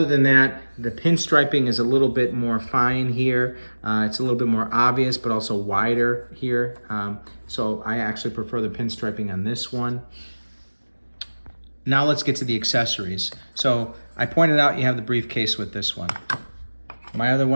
than that, the pinstriping is a little bit more fine here. It's a little bit more obvious, but also wider here. So I actually prefer the pinstriping on this one. Now let's get to the accessories. So I pointed out you have the briefcase with this one. My other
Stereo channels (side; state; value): both; inverted; correlation -1.00